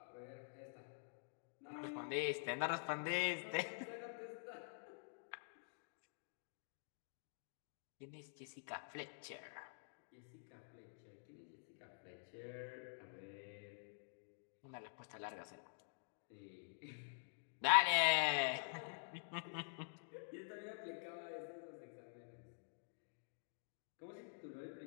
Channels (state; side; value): silent; right; digital silence